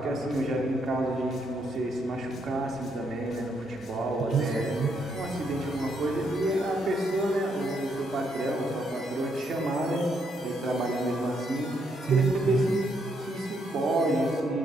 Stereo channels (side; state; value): both; normal; correlation 0.75